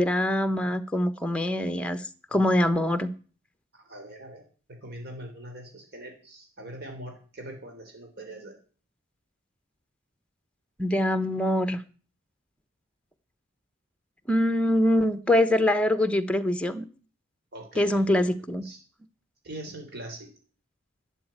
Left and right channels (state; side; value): normal; both; correlation 0.81